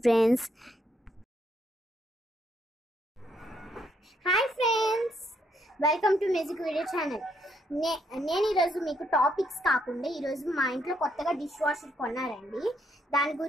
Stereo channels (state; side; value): normal; both; correlation 0.74